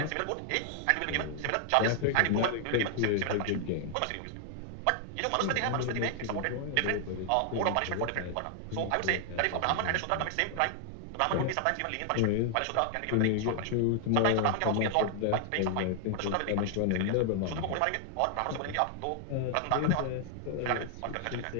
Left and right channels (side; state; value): both; different; correlation 0.00